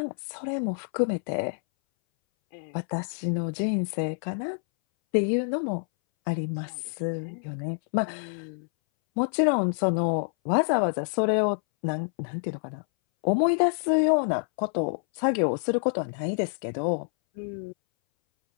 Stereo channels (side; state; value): right; silent; 60 dB below the other